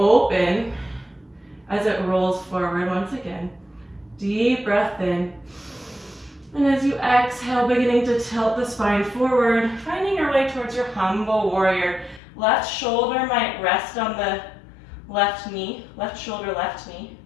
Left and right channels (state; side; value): drops out; right; at 12.2 s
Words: as it rolls forward once again. Deep breath in. And as you exhale, beginning to tilt the spine forward, finding your way towards your humble warrior. Left shoulder might rest on the left knee, left shoulder, left knee.